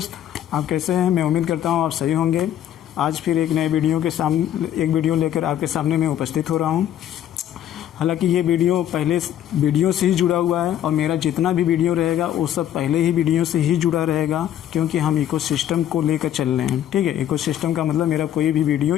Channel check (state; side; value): quieter; right; 11.2 dB